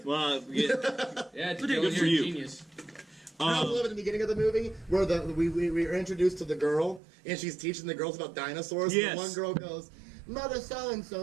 Well, yeah. Yeah, it's Good Dylan, for you're a you. genius. I love at the beginning of the movie where we are introduced to the girl and she's teaching the girls about dinosaurs. Yes. And the one girl goes, "Mother so and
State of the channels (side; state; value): left; drops out; at 7.0 s